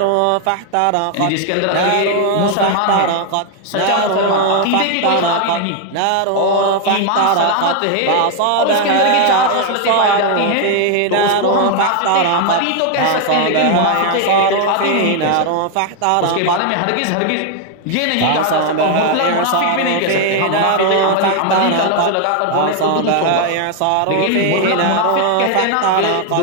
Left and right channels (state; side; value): different; both; correlation 0.00